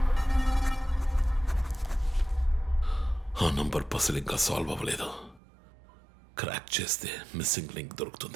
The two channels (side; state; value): left; drops out; at 5.4 s